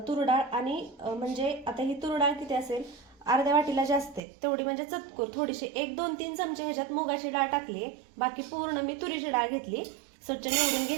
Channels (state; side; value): drops out; left; at 4.2 s